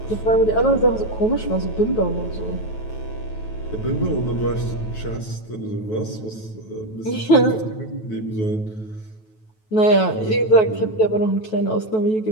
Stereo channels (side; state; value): right; late; 9.2 ms